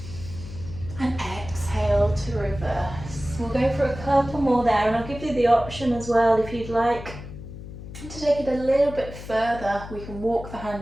And exhale to reverse. We'll go for a couple more there, and I'll give you the option as well if you'd like to take it a little bit further. We can walk the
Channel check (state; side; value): noise; left; hum, 12 dB below the sound